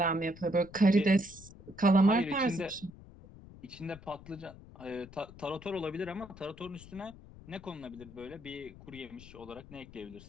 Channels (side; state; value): left; noise; rumble, 18 dB below the sound